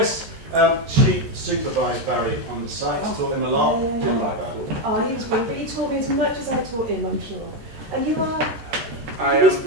She supervised Barry on the site. Taught him a lot. Yeah. Didn't like that. Oh, he was brilliant, but you taught me as much as I taught him, I'm sure. And you are I his am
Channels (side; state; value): left; late; 13 ms